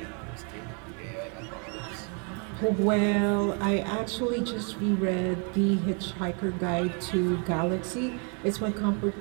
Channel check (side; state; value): left; quieter; 37.7 dB